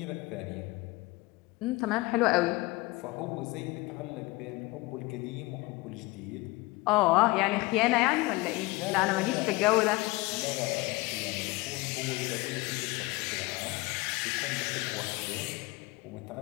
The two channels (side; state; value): right; quieter; 22.4 dB